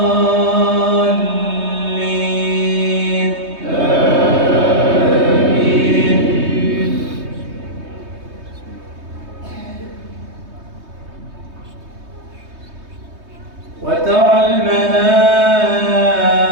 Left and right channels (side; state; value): left; late; 3.2 ms